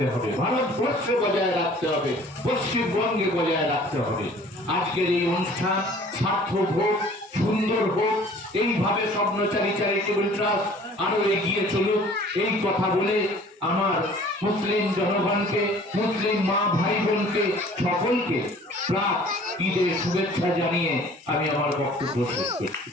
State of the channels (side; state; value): both; normal; correlation 0.51